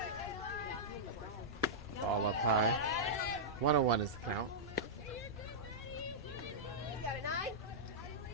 Ball up high. 101 is the count.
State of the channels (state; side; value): normal; both; correlation -0.11